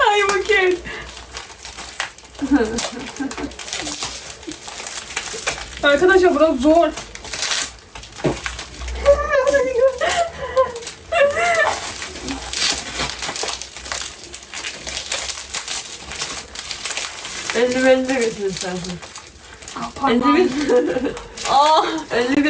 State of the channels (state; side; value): identical; both; correlation 1.00